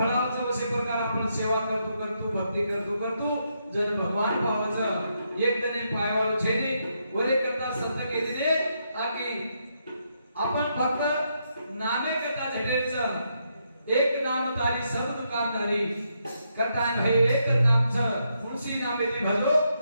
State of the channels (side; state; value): both; inverted; correlation -0.79